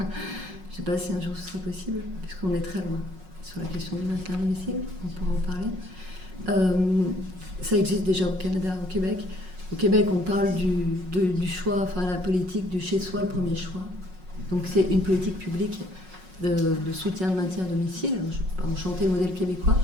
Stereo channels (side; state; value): left; late; 5.4 ms